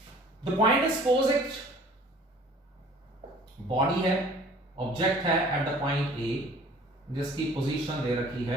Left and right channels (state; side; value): normal; both; correlation 0.50